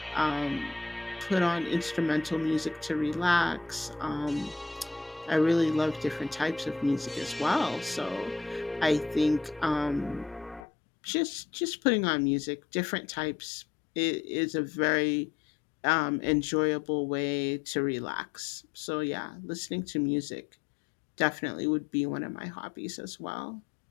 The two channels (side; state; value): right; drops out; at 10.7 s